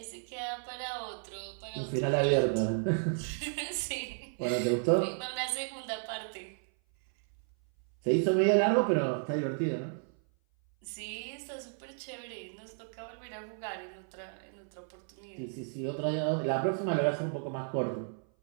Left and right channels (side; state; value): left; silent; 56 dB below the other